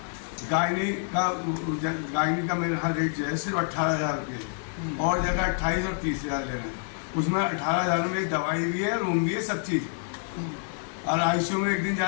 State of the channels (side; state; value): right; silent; digital silence